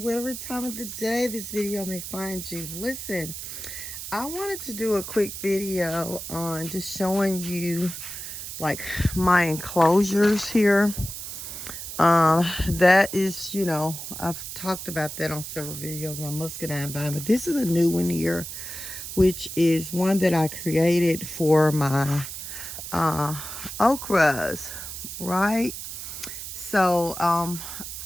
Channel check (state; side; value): noise; right; hiss, 8 dB below the sound